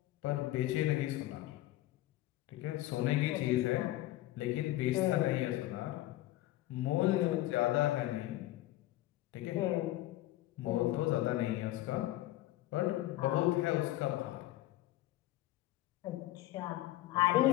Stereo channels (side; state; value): right; quieter; 15.9 dB